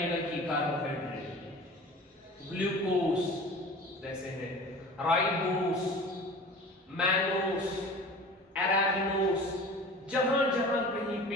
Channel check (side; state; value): both; normal; correlation 0.39